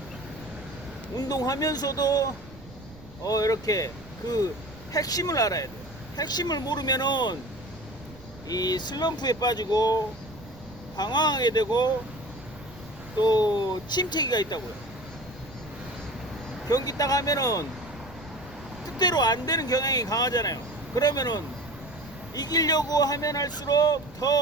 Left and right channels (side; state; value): right; noise; rumble, 19 dB below the sound